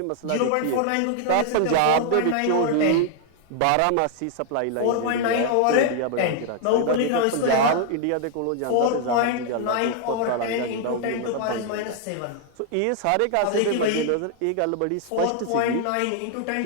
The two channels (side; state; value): both; different; correlation 0.00